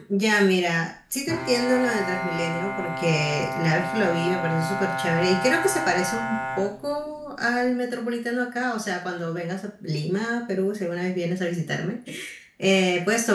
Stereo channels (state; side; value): identical; both; correlation 1.00